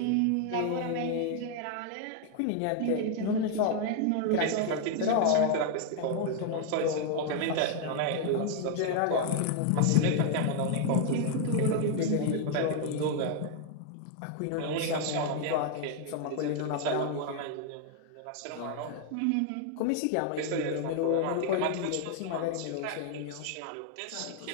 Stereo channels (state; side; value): different; both; correlation 0.00